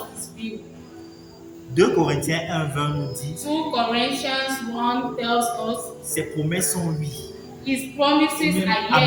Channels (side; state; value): both; identical; correlation 1.00